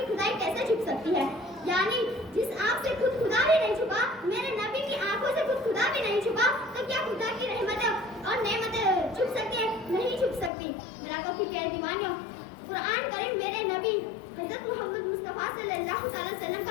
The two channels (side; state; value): right; drops out; at 10.5 s